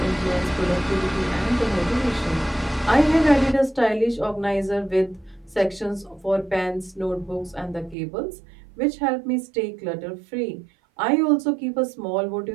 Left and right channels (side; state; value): left; drops out; at 8.0 s